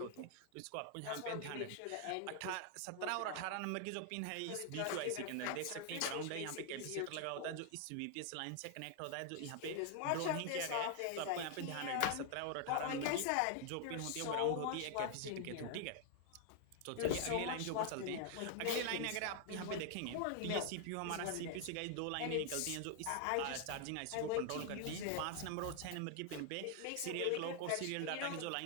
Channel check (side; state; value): both; different; correlation 0.00